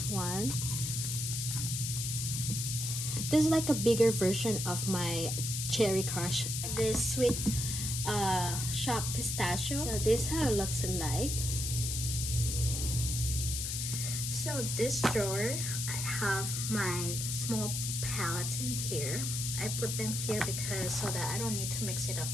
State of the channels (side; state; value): left; noise; hiss, 2 dB below the sound